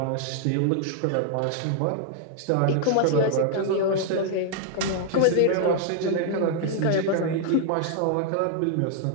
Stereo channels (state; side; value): different; both; correlation 0.00